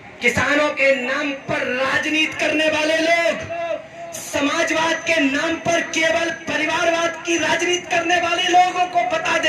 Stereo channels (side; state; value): both; identical; correlation 1.00